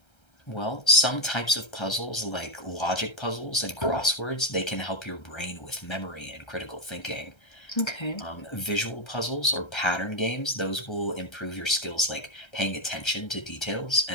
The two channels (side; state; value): right; late; 1.3 ms